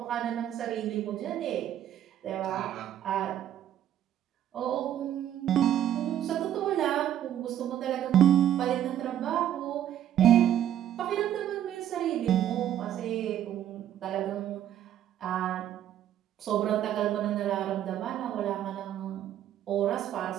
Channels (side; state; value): left; quieter; 11.1 dB